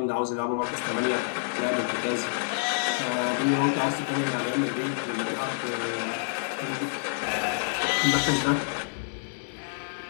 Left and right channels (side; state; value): right; silent; digital silence